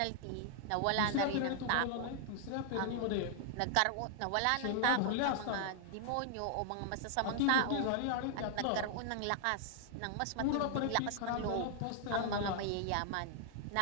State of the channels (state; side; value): different; both; correlation 0.00